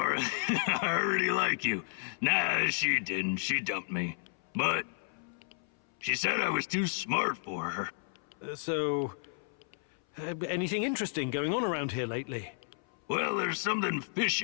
I already like you. Nah, she didn't. She dumped me. But she said I was too smart for her. Anything interesting going on around here lately? Well, there's something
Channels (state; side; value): silent; right; 56 dB below the other